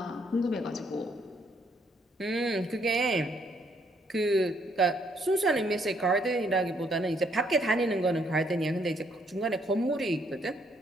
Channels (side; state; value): both; normal; correlation 0.70